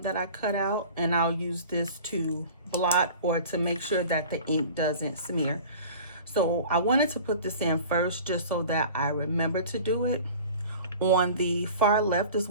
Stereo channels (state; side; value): inverted; both; correlation -0.42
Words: that I cut out, and I'll use this to blot or to make sure that the ink doesn't smear. So I wanted to put this in first just so that I remember to do it. On the far left is